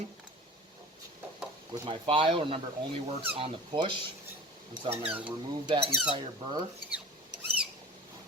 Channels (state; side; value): normal; both; correlation 0.38